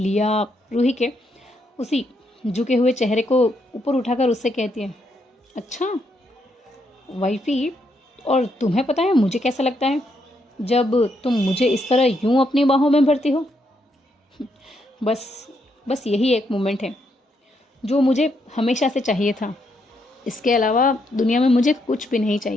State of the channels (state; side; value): normal; both; correlation 0.77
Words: रूही के उसी झुके हुए चेहरे को ऊपर उठाकर उससे कहती है, अच्छा वाइफी, और तुम्हें पता है मुझे कैसा लगता है जब तुम मुझे इस तरह यूं अपनी बाहों में भरती हो? बस यही एक मोमेंट है जो मुझे हमेशा से चाहिए था। इसके अलावा दुनिया में मुझे कुछ भी नहीं